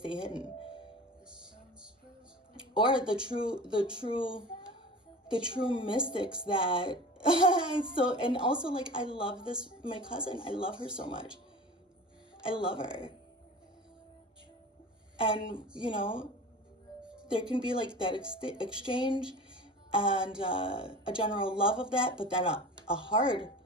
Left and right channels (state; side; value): normal; both; correlation 0.36